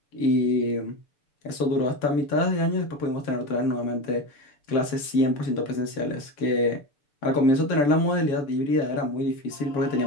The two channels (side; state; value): right; late; 6.9 ms